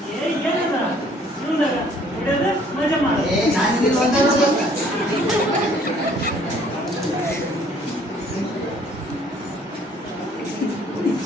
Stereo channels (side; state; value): both; normal; correlation 0.59